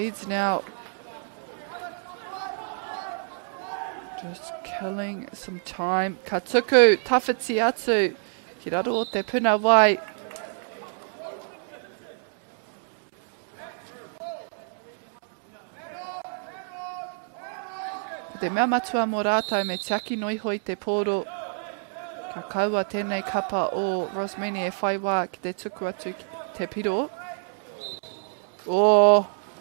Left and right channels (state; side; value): silent; left; digital silence